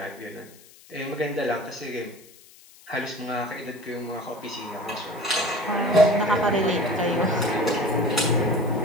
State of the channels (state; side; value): noise; left; hiss, 24 dB below the sound